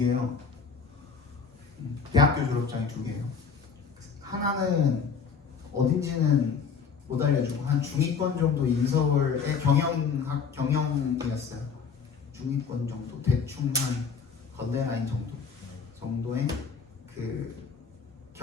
대학교 졸업장이 2개예요. 하나는 어딘지는 못 알려주고 한 중위권 정도 인서울의 경영이었어요. 중위권 정도 대충 한 건대라인 정도의 그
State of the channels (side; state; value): right; quieter; 5.9 dB